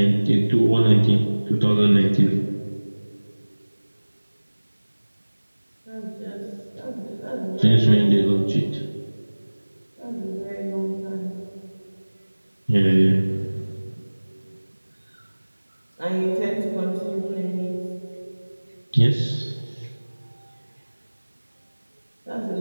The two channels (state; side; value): inverted; both; correlation -1.00